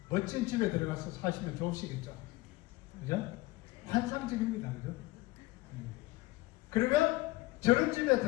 멋진 집에 들어가서 사시면 좋으시겠죠. 그죠? 환상적입니다. 그죠? 그러면 저런 집에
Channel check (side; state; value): right; quieter; 19.8 dB